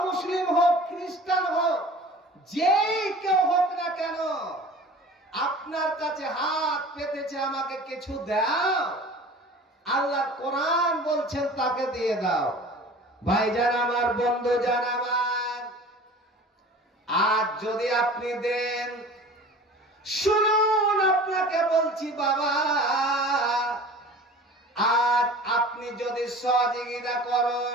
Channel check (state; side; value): normal; both; correlation 0.42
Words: মুসলিম হোক, খ্রিস্টান হোক, যেই কেউ হোক না কেন, আপনার কাছে হাত পেতেছে আমাকে কিছু দাও, আল্লাহ কোরআন বলছেন তাকে দিয়ে দাও। ভাইজান আমার, বন্ধু জান আমার, আজ যদি আপনি দেন, শুনুন আপনাকে বলছি বাবা, আজ আপনি যদি সহযোগিতা